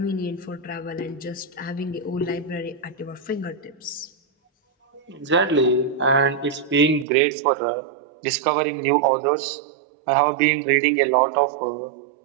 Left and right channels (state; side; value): drops out; left; at 7.1 s